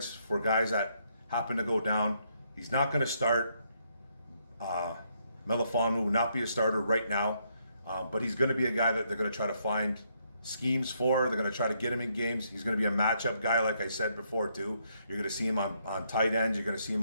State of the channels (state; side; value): inverted; both; correlation -0.74